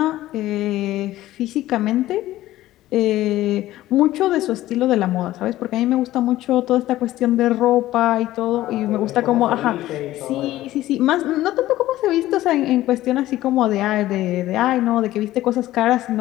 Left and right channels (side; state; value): right; quieter; 15.2 dB